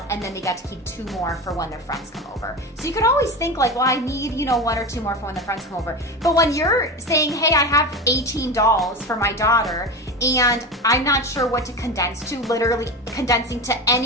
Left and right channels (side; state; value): both; normal; correlation 0.24